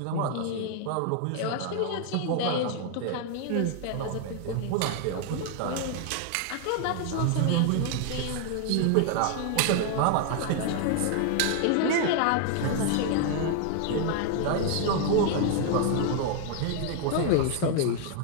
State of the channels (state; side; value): different; both; correlation 0.00